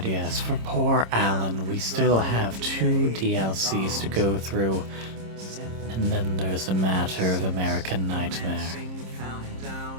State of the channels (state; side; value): late; left; 26 ms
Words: yes, for poor Alan, we still have 2 DLCs to go through, and then there's a matter of American Nightmare.